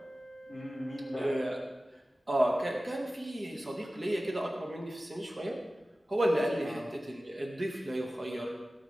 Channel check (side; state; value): both; normal; correlation 0.96